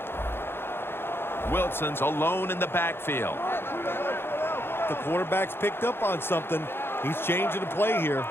Wilson's alone in the backfield. The quarterback's picked up on something. He's changing the play here.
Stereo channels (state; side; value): late; right; 0.11 ms